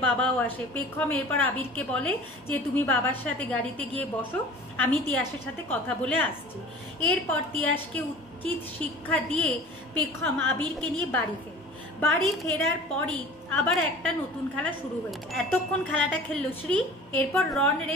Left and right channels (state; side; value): normal; both; correlation 0.42